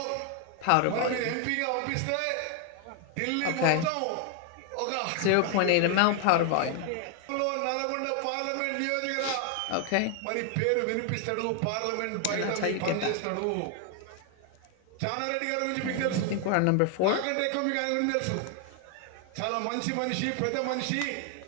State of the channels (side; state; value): both; different; correlation 0.00